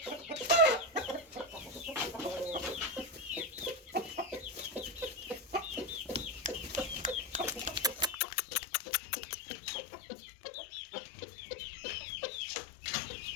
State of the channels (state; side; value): drops out; right; at 8.2 s